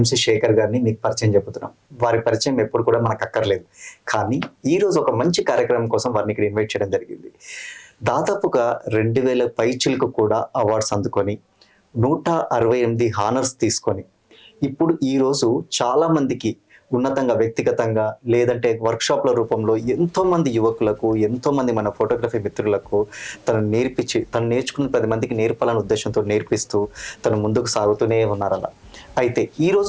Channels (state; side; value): identical; both; correlation 1.00